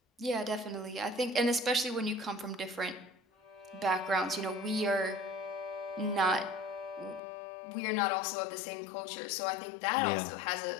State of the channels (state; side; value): drops out; right; at 7.2 s